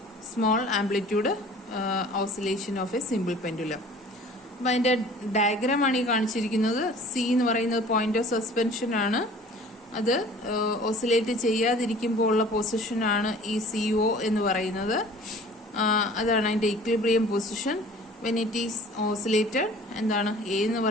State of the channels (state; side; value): normal; both; correlation 0.47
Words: small amplitude oscillation of a simple pendulum. അപ്പം അതിൻ്റെ ഡയഗ്രാമാണ് ഈ കാണിച്ചിരിക്കുന്നത്. സി എന്ന് പറയുന്നത് പോയിന്റ് ഓഫ് സസ്പെൻഷൻ ആണ്. അത് ഓസിലേറ്റ് ചെയ്യാതിരിക്കുമ്പോൾ ഉള്ള പൊസിഷനാണ് ഈ CO എന്ന് പറയുന്നത്. അതാണ് അതിൻ്റെ equilibrium position. When it is oscillated എന്താണ് എ എന്ന്